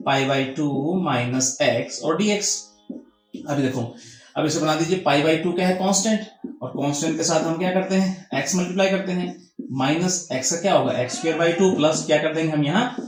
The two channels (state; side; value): identical; both; correlation 1.00